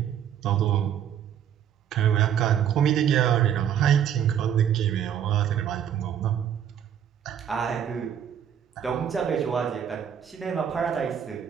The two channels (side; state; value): left; quieter; 9.2 dB